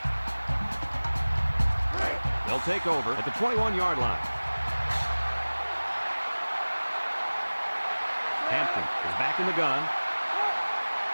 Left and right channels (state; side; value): inverted; both; correlation -1.00